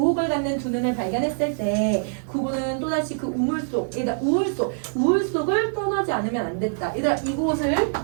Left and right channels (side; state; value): left; silent; digital silence